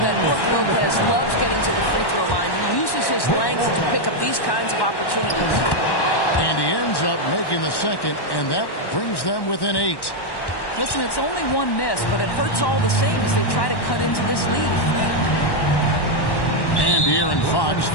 Brook Lopez loves getting to the free throw line. He uses his length to pick up these kinds of opportunities. And he ends up making the second, and that brings them within 8. Listen, it's only one miss, but it hurts all the same as they try to cut into this lead. And Aaron Fox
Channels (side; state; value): right; late; 1.1 ms